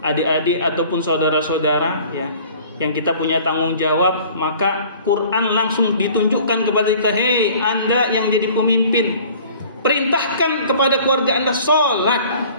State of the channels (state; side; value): inverted; both; correlation -0.49